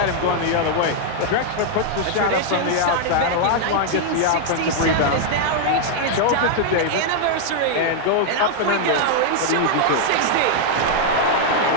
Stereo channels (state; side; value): different; both; correlation 0.00